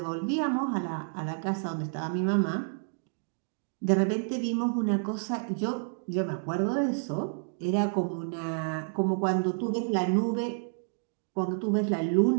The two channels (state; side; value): silent; left; digital silence